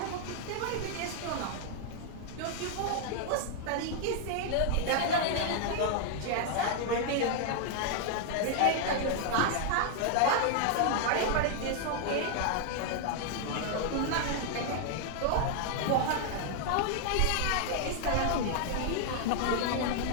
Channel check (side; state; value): both; different; correlation 0.00